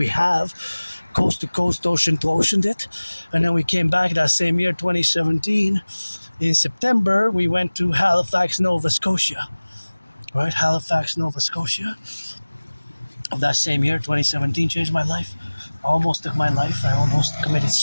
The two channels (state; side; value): inverted; both; correlation -1.00